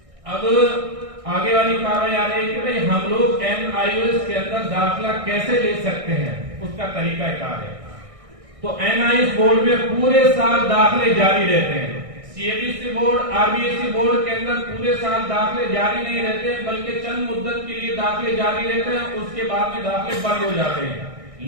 اب آگے والی کارروائی آ رہی ہے کہ بھئی ہم لوگ NIOS کے اندر داخلہ کیسے لے سکتے ہیں، اس کا طریقہ کار ہے. تو NIOS بورڈ میں پورے سال داخلے جاری رہتے ہیں. CBSE بورڈ RBSE بورڈ کے اندر پورے سال داخلے جاری نہیں رہتے بلکہ چند مدت کے لیے داخلے جاری رہتے ہیں، اس کے بعد میں داخلے بند ہو جاتے ہیں.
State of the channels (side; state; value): left; late; 1.6 ms